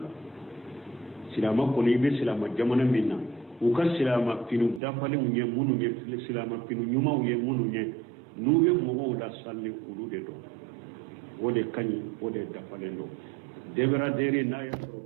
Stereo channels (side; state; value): left; drops out; at 4.8 s